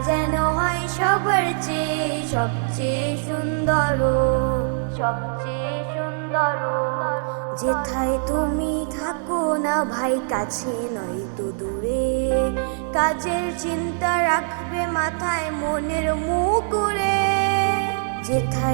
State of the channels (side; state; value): left; silent; digital silence